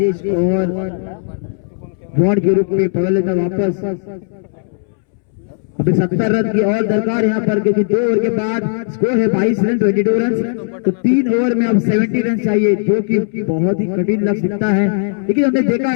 और बॉन्ड के रूप में पकड़ लेता वापस। अभी 70 रन की और दरकार यहाँ पर, क्योंकि 2 ओवर के बाद स्कोर है 22 रन 22 रन, तो 3 ओवर में अब 70 रन चाहिए, जो कि बहुत ही कठिन लक्ष्य दिखता है। लेकिन हमने देखा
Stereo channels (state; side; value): silent; right; 68 dB below the other